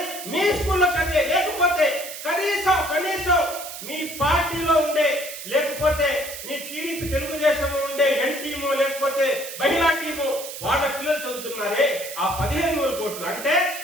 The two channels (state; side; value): noise; right; hiss, 10 dB below the sound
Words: మీ స్కూల్లో చదివే, లేకపోతే కనీసం మీ పార్టీలో ఉండే, లేకపోతే మీ టీడీపీ తెలుగుదేశంలో ఉండే ఎన్ టీము, లేకపోతే మహిళా టీము, వాళ్ళ పిల్లలు చదువుతున్నారే ఆ 15,000 కోట్లు. అంటే